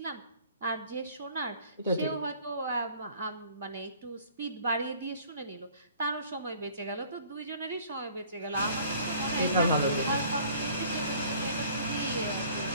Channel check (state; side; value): inverted; both; correlation -0.53